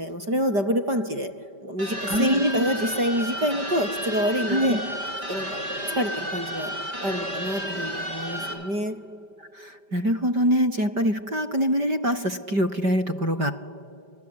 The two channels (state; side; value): late; left; 5.1 ms